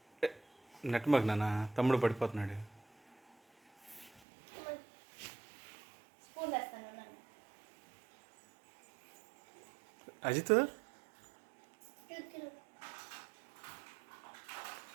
నెట్మక్ నాన్న, తమ్ముడు పడిపోతున్నాడు. అజిత్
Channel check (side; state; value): left; drops out; at 4.2 s